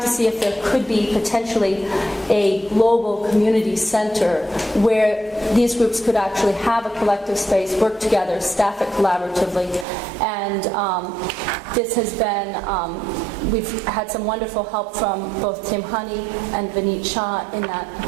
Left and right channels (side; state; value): left; drops out; at 9.9 s